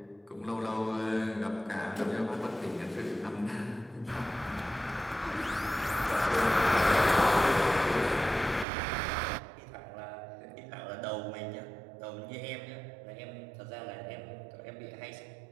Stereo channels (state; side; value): drops out; left; at 8.7 s